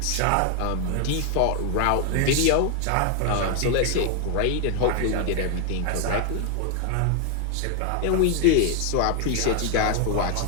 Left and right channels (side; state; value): both; different; correlation 0.00